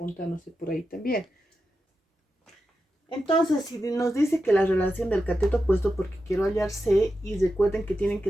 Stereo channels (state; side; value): normal; both; correlation 0.89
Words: por ahí también. Entonces, si nos dice que la relación del cateto opuesto, porque quiero hallar C, y recuerden que tienen